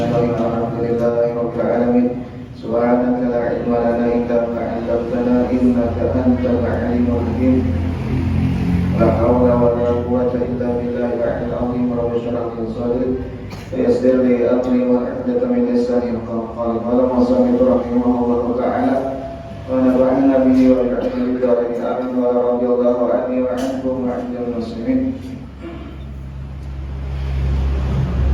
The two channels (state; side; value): identical; both; correlation 1.00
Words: Alhamdulillahi rabbil alamin. Subhanaka la ilma lana illa ma 'allamtana innaka antal 'alimul hakim. La haula wa la quwwata illa billahi al-'aliyyil 'azhim. Rabbi shrah li sadri wa yassir li amri wa hlul 'uqdatam min lisani yafqahu qawli. Qala Muhammad rahimahullahu ta'ala wa nafa'ana bihi wa bi'ilmihi bidarin amin wa radhiyallahu anni wa ankum wa 'anil muslimin.